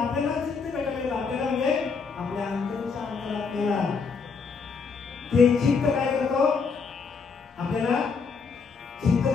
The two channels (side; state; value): right; quieter; 5.2 dB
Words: चित्त भेटायला आपल्याला म्हणजे आपल्या अंतरच्या अंतरात्म्याला ते चित्त काय करतो आपल्याला, चित्त